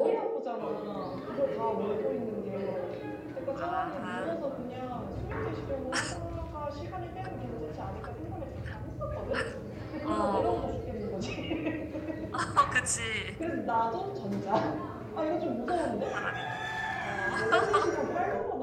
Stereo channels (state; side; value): identical; both; correlation 1.00